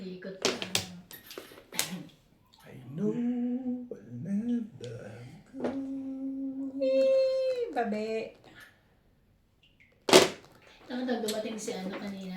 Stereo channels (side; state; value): both; identical; correlation 1.00